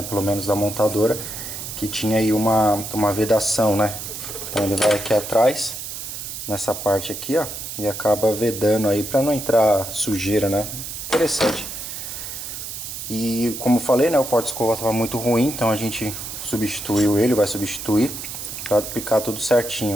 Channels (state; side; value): noise; right; hiss, 8 dB below the sound